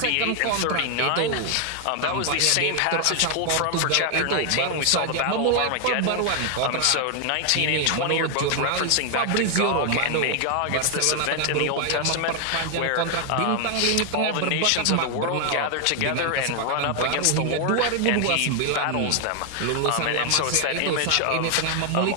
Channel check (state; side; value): different; both; correlation 0.00